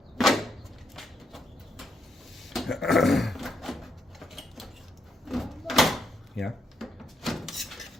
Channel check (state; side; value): normal; both; correlation 0.78